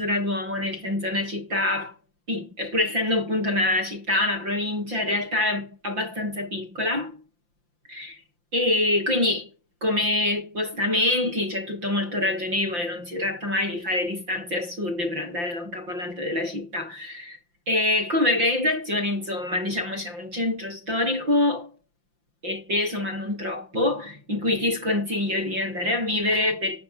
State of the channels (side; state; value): left; late; 5.8 ms